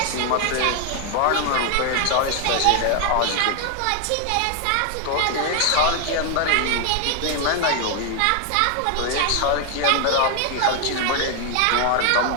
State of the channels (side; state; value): both; different; correlation 0.00